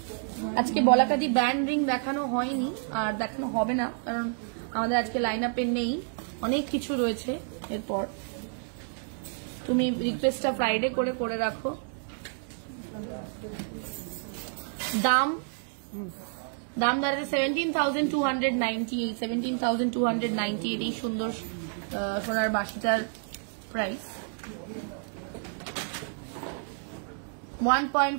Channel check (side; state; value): left; silent; 58 dB below the other